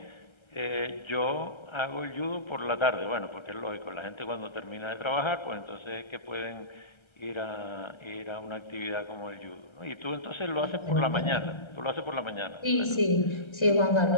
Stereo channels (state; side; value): late; right; 1.3 ms